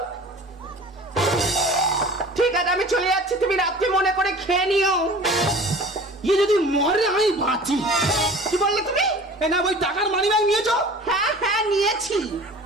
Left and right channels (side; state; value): both; normal; correlation 0.42